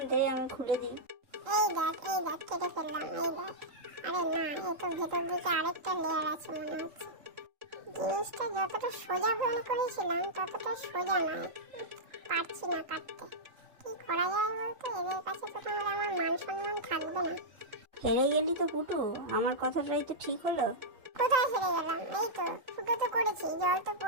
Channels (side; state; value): left; late; 3.8 ms